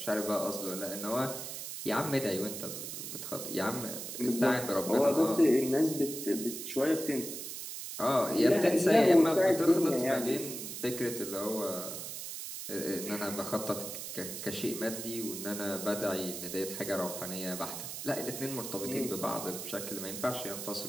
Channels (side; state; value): right; noise; hiss, 7 dB below the sound